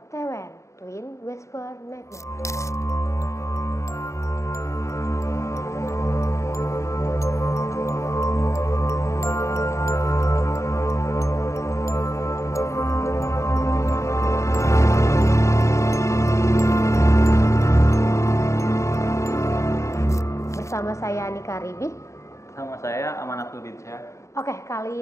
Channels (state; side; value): late; right; 0.14 ms